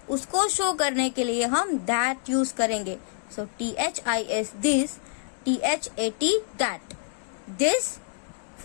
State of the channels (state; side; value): silent; right; digital silence